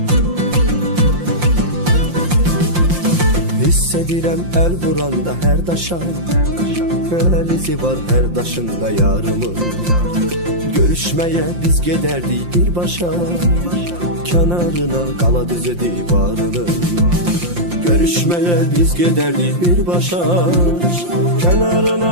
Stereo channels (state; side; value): late; left; 5.7 ms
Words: Hiss edirəm əl vuranda hər daşa, əl izi var hər daşında yarımın. Görüşməyə biz gedərdik birbaşa, kənarına qala düzü divarının. Görüşməyə biz gedərdik birbaşa, kənarına